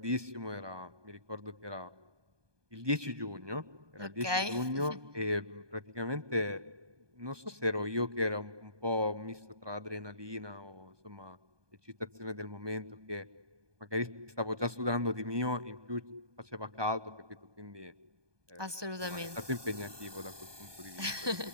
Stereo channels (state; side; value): late; left; 1.2 ms